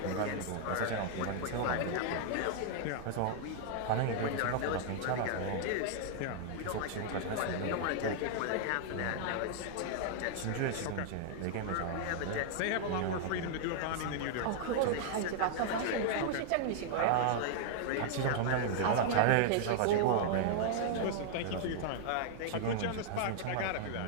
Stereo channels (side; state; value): both; different; correlation -0.01